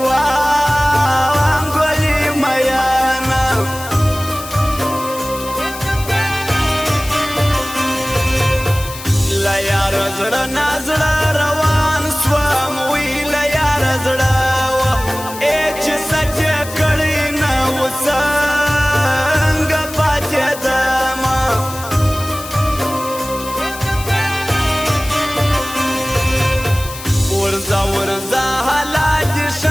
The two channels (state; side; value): noise; left; hiss, 13 dB below the sound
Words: وانګولې میانه له یاره زړه نا زړه روان سوم وی له یاره زړه چې سچ یې کړی نه و څنګه پاتېدمه ورځه ورځه حالا دې